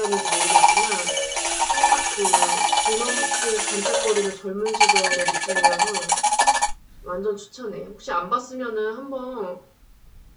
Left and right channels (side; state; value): both; identical; correlation 1.00